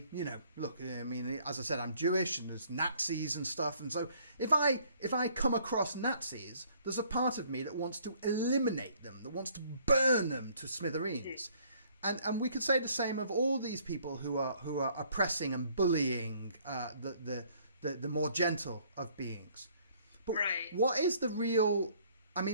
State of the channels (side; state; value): both; inverted; correlation -0.61